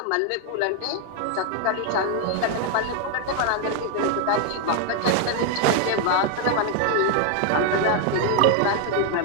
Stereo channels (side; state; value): both; different; correlation 0.01